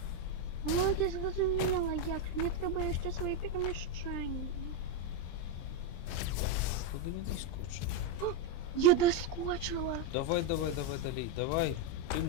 О, я зрозуміла, як. Мені треба ще свої переміщення. Куди не доскочив? Я доскочила. Давай, Далей, давай. Ты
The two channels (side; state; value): right; late; 23 ms